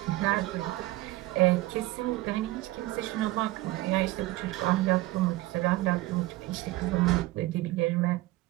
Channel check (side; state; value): left; quieter; 18.7 dB